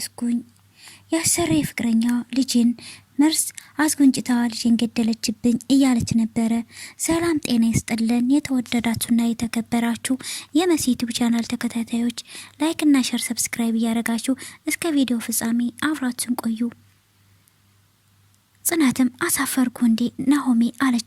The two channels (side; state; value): both; identical; correlation 1.00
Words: የአሰሪ ፍቅረኛ ልጅን መርስ አስጎንጭታ ልጅን ገደለችብኝ እያለች ነበረ። ሰላም ጤና ይስጥልን የተወደዳችሁና የተከበራችሁ የመሲ ዩቲዩብ ቻናል ተከታታዮች ላይክ እና ሼር ሰብስክራይብ እያደረጋችሁ እስከ ቪዲዮ ፍጻሜ አብራችሁን ቆዩ። ጽናትም አሳፈርኩ እንዴ ናሆሜ